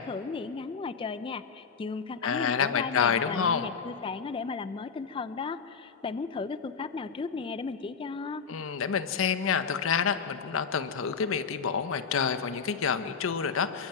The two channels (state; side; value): quieter; right; 5.9 dB